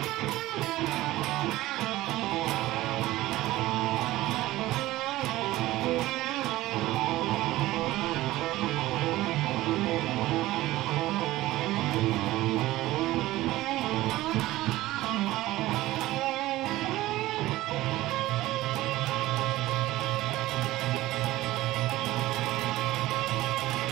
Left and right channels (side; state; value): left; quieter; 17.0 dB